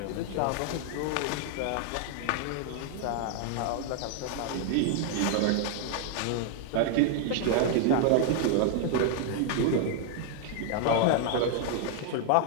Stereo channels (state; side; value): different; both; correlation 0.00